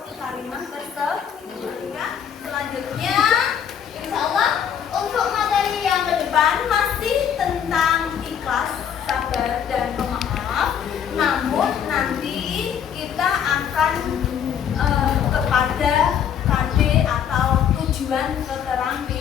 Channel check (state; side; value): quieter; right; 8.6 dB